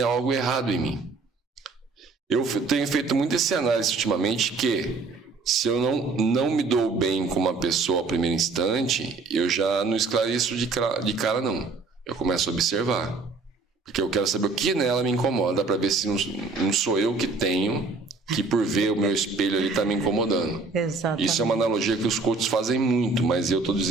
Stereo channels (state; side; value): quieter; left; 4.0 dB